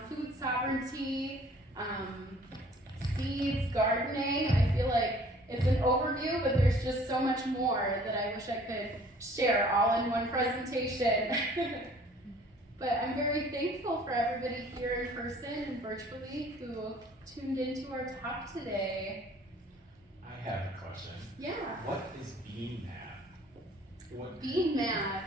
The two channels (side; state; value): both; normal; correlation 0.54